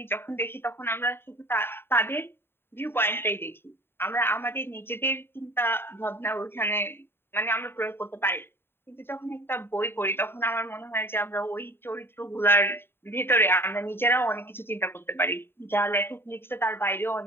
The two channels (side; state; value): right; late; 0.11 ms